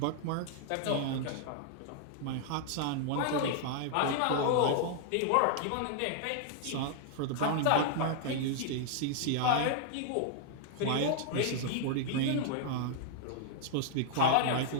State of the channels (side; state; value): both; different; correlation -0.01